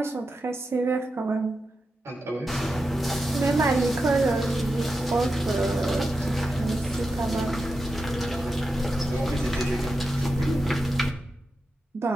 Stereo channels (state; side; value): normal; both; correlation 0.89